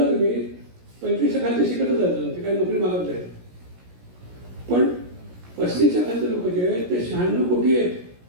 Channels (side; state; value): left; late; 17 ms